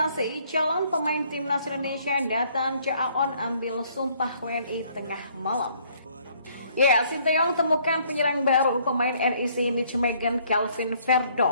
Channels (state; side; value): inverted; both; correlation -0.64